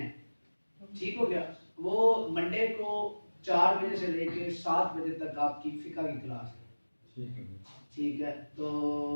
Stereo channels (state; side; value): inverted; both; correlation -1.00